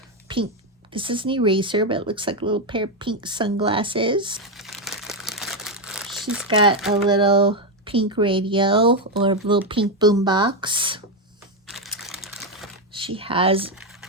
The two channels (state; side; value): normal; both; correlation 0.06